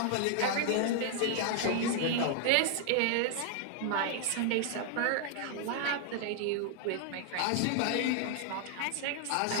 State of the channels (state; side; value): different; both; correlation 0.00